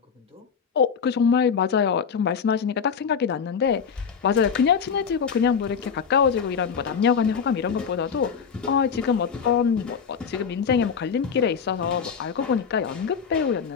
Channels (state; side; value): quieter; right; 6.6 dB